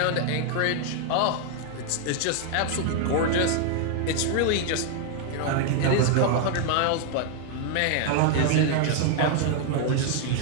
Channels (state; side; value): different; both; correlation 0.00